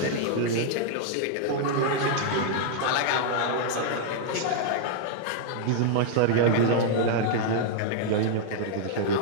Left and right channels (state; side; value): different; both; correlation -0.01